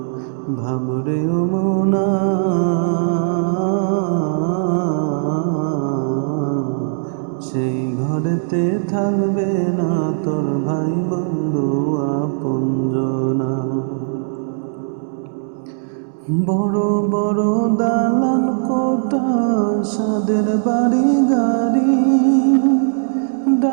ভাবরে ও মনা, সেই ঘরেতে থাকবে না তোর ভাই বন্ধু আপনজনা। বড় বড় দালান কোঠা, সাদের বাড়ি গাড়ি,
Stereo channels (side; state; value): left; silent; 67 dB below the other